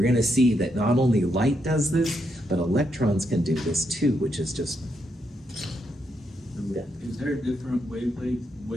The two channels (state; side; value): normal; both; correlation 0.80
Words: going to see that not only light does this, but electrons can do this too, which is just... Yeah. Is there a different